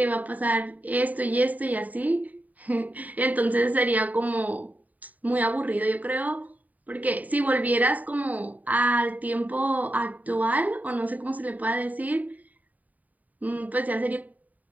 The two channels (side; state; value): left; late; 0.075 ms